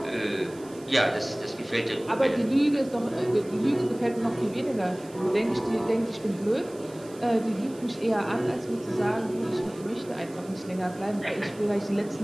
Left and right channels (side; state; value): right; noise; hiss, 23 dB below the sound